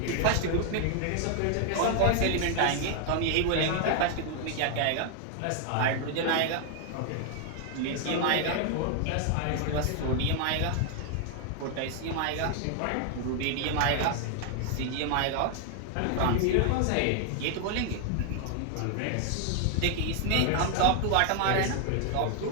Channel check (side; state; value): both; different; correlation 0.00